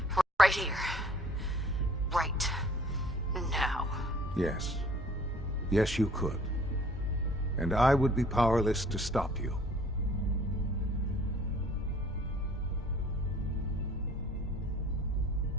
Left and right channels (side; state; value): both; normal; correlation 0.54